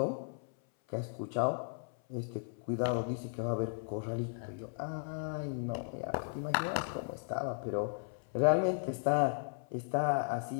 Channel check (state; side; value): silent; right; 54 dB below the other